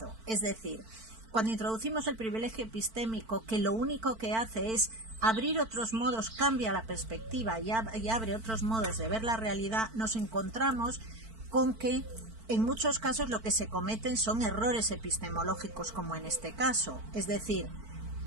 Es decir, cuando introducimos el privilegio epistémico, que lo único que hace es abrir otros modos, cambia la perspectiva y abre otros modos de ver la realidad, nos encontramos con que en muchos casos lo que se cometen son errores epistemológicos, como en este caso, es decir,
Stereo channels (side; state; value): left; late; 4.5 ms